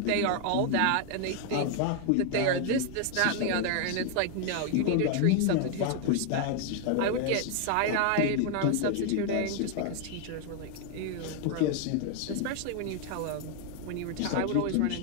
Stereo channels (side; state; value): both; different; correlation 0.00